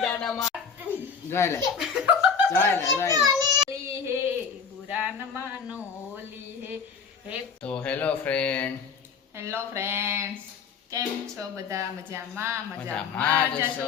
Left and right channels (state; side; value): quieter; right; 6.1 dB